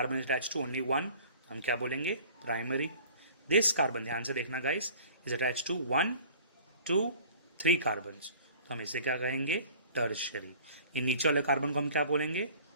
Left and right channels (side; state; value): both; inverted; correlation -0.48